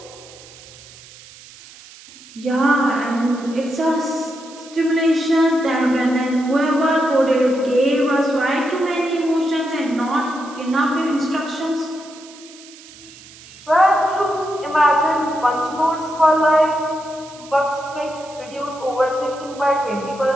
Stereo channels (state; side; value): noise; right; hiss, 20 dB below the sound